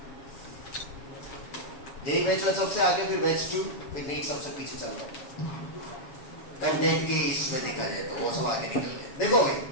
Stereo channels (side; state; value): right; late; 7.2 ms